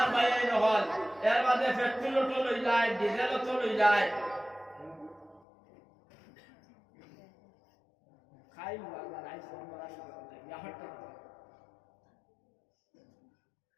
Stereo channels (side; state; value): right; drops out; at 5.4 s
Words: ভাইয়াই নহল এর বাদে পেট্রোল তো লই যায় ডিজেল তো লই যায় খাই লাগা রাইস আমরা ইয়া হটতে